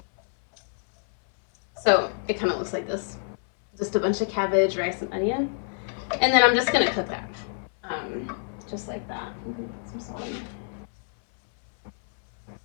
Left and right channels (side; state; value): right; silent; 60 dB below the other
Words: So it kind of looks like this. Just a bunch of cabbage, rice, and onion. And then I'm just going to cook that. Just like that. I'm going to put some salt in there.